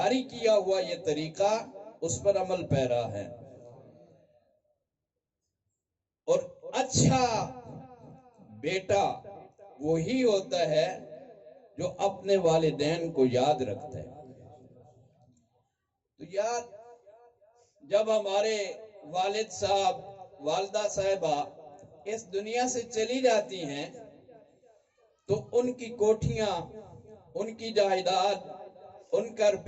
کیا ہوا یہ طریقہ اس پر عمل پیرا ہے۔ اور اچھا بیٹا وہی ہوتا ہے جو اپنے والدین کو یاد رکھتا ہے۔ تو یار، جب ہمارے والد صاحب، والدہ صاحبہ اس دنیا سے چلی جاتی ہیں تو ان کی کوٹھیاں، ان کی جائیداد، ان کا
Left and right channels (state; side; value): identical; both; correlation 1.00